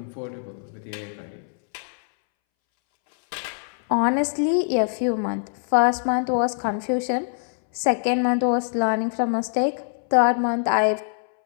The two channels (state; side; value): silent; right; 63 dB below the other